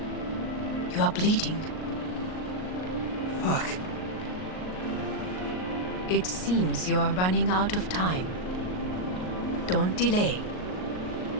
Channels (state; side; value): late; right; 38 ms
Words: are bleeding. Fuck. It seems you are running out of time. Don't delay.